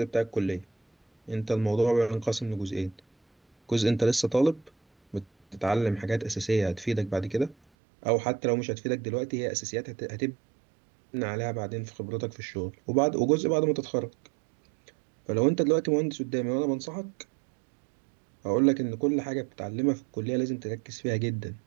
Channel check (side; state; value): left; drops out; at 7.6 s